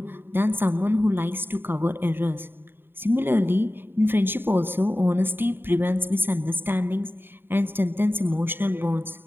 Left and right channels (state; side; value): late; left; 0.10 ms